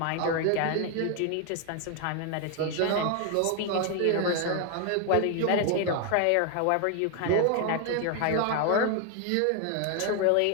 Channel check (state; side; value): different; both; correlation 0.00